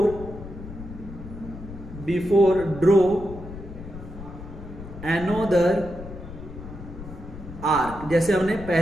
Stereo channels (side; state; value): left; noise; rumble, 12 dB below the sound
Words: before draw another arc, जैसे हमने